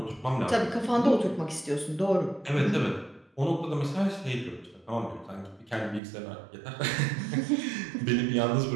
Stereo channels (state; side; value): drops out; left; at 6.0 s